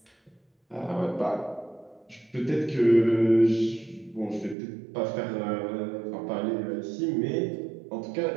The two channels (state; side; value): drops out; left; at 4.5 s